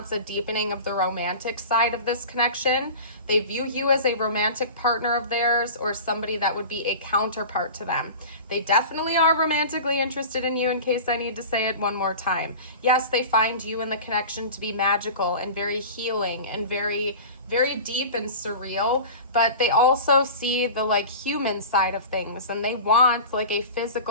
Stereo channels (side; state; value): both; inverted; correlation -0.35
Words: a deepening of the romantic side of this connection. They view you as a romantic partner of theirs or somebody that would be a counterpart to them. They definitely are romantically interested in you, in case I need to say it one more time. Yes, they find you and the connection to be magical and very healing and very, very deep and surreal, but they also see the like human side of things, and they want like a